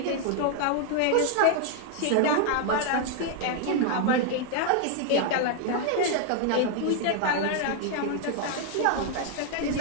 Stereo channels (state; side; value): different; both; correlation 0.00